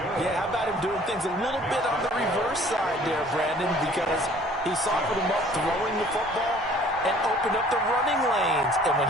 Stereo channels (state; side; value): normal; both; correlation 0.54